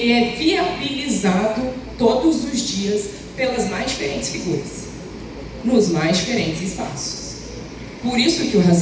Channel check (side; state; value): both; identical; correlation 1.00